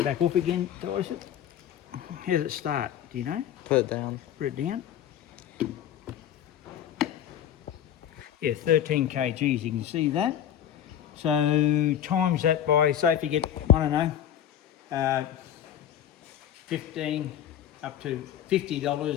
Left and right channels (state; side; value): quieter; right; 10.3 dB